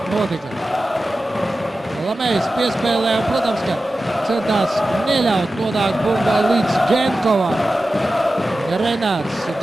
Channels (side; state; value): both; normal; correlation 0.94